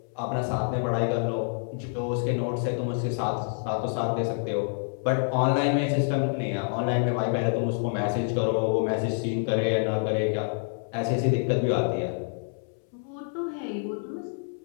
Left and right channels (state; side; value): silent; right; 60 dB below the other